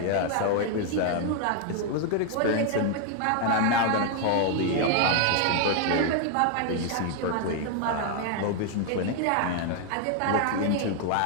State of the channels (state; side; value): different; both; correlation 0.01